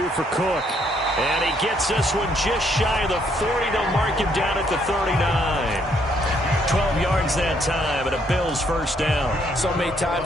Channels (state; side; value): normal; both; correlation 0.70